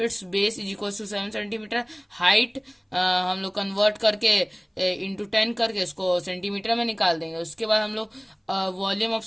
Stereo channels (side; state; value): both; identical; correlation 1.00